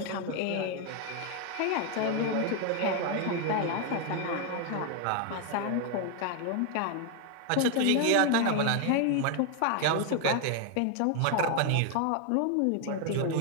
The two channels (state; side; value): different; both; correlation 0.01